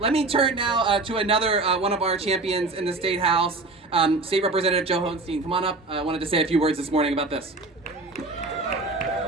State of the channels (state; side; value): quieter; left; 3.3 dB